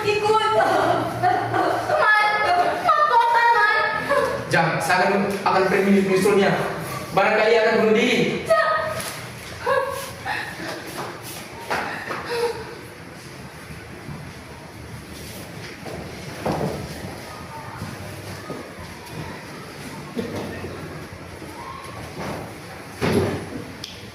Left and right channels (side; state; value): both; identical; correlation 1.00